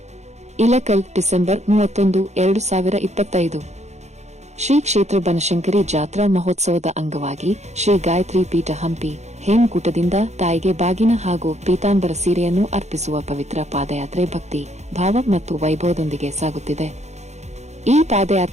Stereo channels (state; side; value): late; left; 0.33 ms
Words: ಇಲಕಲ್ ಡಿಸೆಂಬರ್ 31, 2025. ಶ್ರೀ ಕ್ಷೇತ್ರ ಬನಶಂಕರಿ ಜಾತ್ರಾ ಮಹೋತ್ಸವದ ಅಂಗವಾಗಿ ಶ್ರೀ ಗಾಯತ್ರಿ ಪೀಠ ಹಂಪಿ ಹೇಮಕೂಟದಿಂದ ತಾಯಿಗೆ ಬಾಗಿನ ಹಾಗೂ ಪೀತಾಂಬರ ಸೀರೆಯನ್ನು ಅರ್ಪಿಸುವ ಪವಿತ್ರ ಪಾದಯಾತ್ರೆ ಭಕ್ತಿ ಭಾವ ಮತ್ತು ವೈಭವದೊಂದಿಗೆ ಸಾಗುತ್ತಿದೆ. ಈ